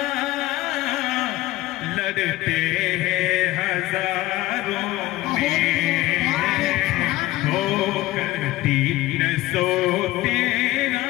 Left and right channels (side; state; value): right; quieter; 17.5 dB